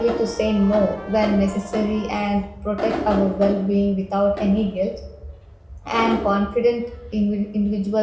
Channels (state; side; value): identical; both; correlation 1.00